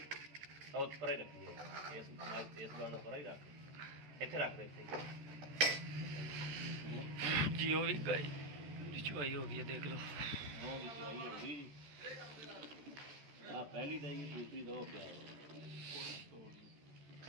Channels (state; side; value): late; left; 14 ms